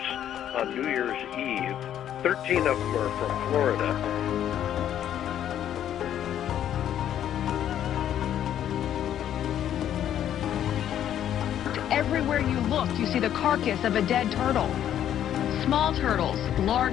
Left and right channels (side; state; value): right; quieter; 10.6 dB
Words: on New Year's Eve. 13 of them are from Florida. Everywhere you look, you see the carcass of a dead turtle. Small turtles,